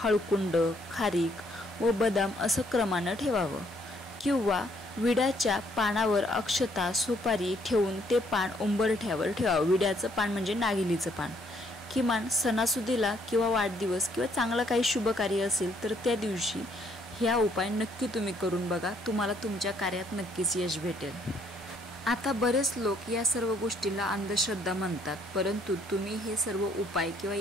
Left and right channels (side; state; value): both; normal; correlation 0.67